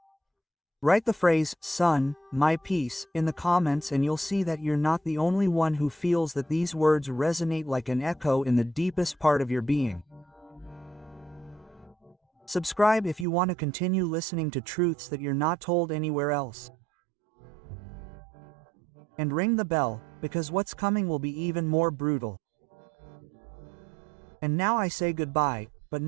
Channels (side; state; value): left; drops out; at 13.2 s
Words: Write the phrase, "Son, my peace," in the comments and you'll see that you're not the only one who feels that these words resonate like an echo in the deepest part of your being. Subscribe if you want to continue listening to truths that you're not told anywhere else. And ring the bell, because what's coming will be even more brutal. And now I say goodbye, but